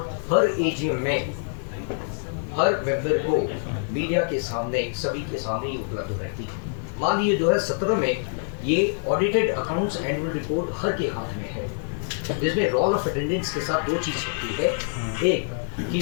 हर एजीएम में हर मेंबर को मीडिया के सामने, सभी के सामने ही उपलब्ध रहती है। मान लीजिए 2017 में ये ऑडिटेड अकाउंट्स एनुअल रिपोर्ट हर के हाथ में है, जिसमें रोल ऑफ अटेंडेंस के साथ 2 चीज छपती है। एक कि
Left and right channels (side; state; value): right; silent; digital silence